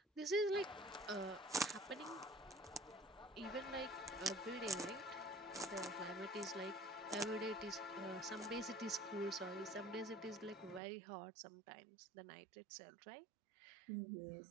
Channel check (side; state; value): left; drops out; at 10.8 s